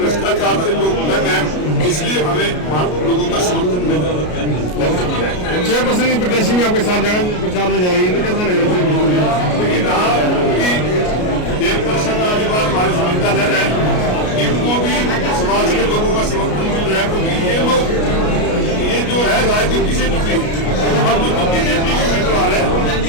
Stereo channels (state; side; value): late; right; 33 ms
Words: से लोग तंग हैं, इसलिए हमें लोगों का समर्थन मिल रहा है। 6% की प्रत्याशी भी आपके साथ जगह प्रचार में जा रही है, तो कैसा लग रहा है? लेकिन कि 1% वाली बात हमारी सुविधा ले रहा है, इनको भी समाज के लोगों का समर्थन मिल रहा है, क्योंकि ये लोग, ये जो है राजनीति से जुटे, और जो बीजेपी के उम्मीदवार है